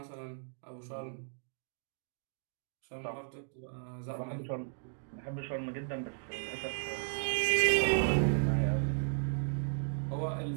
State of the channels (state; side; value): silent; left; digital silence